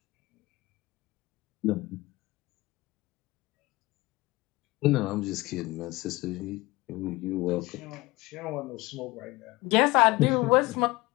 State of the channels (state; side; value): quieter; right; 21.3 dB